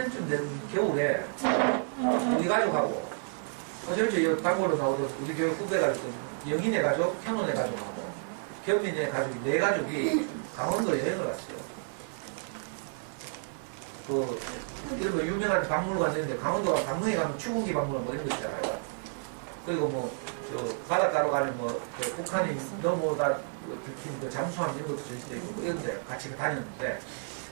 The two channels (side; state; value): left; silent; 57 dB below the other